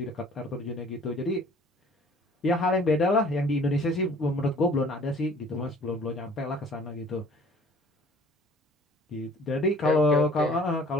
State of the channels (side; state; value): both; normal; correlation 0.52